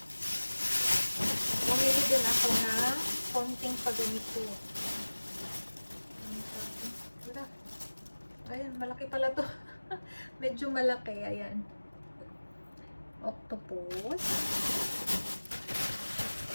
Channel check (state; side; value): inverted; both; correlation -1.00